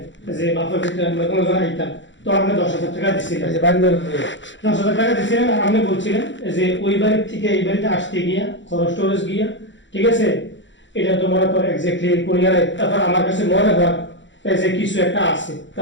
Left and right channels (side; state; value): right; late; 0.54 ms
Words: যে বাপের ক্ষেত্রে আমরা কোনো জন আইতাম তো আপনি 10,000 টাকা দিচ্ছিলেন, 10,000 টাকা দিচ্ছিলেন আর আপনি বলছিলেন যে ওই বাড়ির থেকে এই বাড়িতে আসতে গিয়া খরচ টরচ গিয়া ঠিক আছে এটা তো মনে করে এক্স্যাক্টলি কোন জায়গায় তারপর আমার কাছে মনে হয় যে কিছু একটা আছে